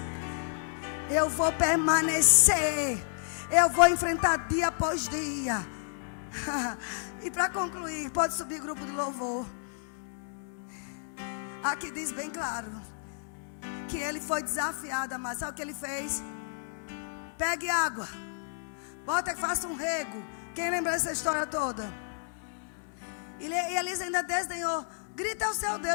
Eu vou permanecer. Eu vou enfrentar dia após dia. E para concluir, pode subir grupo do louvor. Aqui diz bem claro que ele foi desafiado, mas sabe o que ele fez? Pegue água, bota que faça um rego. Quem lembra dessa história toda? E Elias ainda desdenhou. Grita ao seu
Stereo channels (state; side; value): silent; right; 57 dB below the other